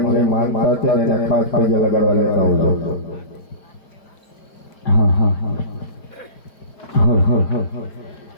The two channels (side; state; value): right; late; 4.5 ms